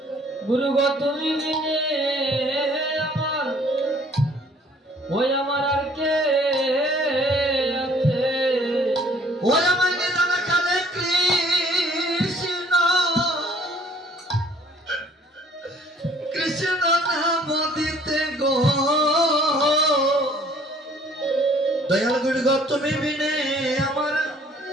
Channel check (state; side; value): normal; both; correlation 0.57